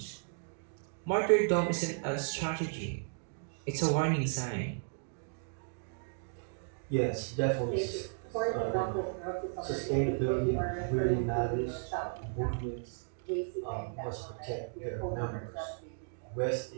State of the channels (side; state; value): left; silent; digital silence